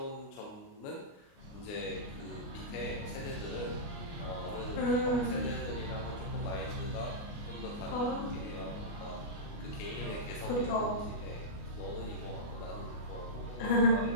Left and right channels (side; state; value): right; late; 29 ms